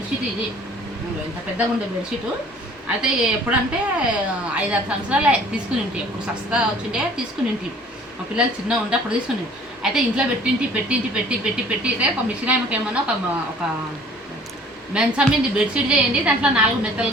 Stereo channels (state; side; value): normal; both; correlation 0.52